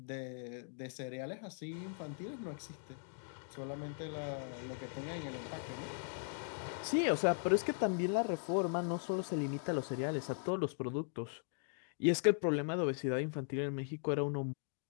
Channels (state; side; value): silent; right; digital silence